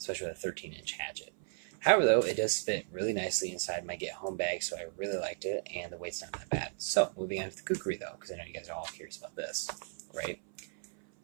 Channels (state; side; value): silent; left; 54 dB below the other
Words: with a 13-inch hatchet. However, though, it does fit really nicely inside my get-home bag, so I really liked it, and the weight's not that bad. So, moving on to the kukri, though, because I know you guys are all curious about this, right?